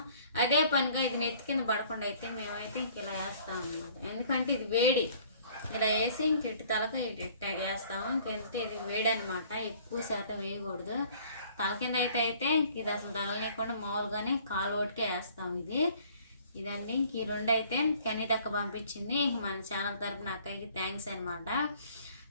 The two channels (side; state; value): both; inverted; correlation -0.55